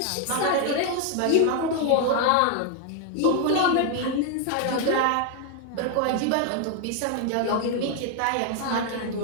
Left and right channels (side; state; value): both; different; correlation 0.00